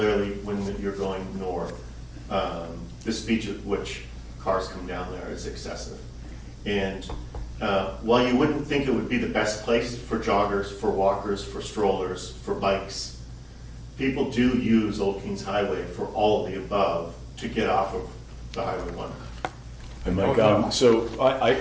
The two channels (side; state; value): both; identical; correlation 1.00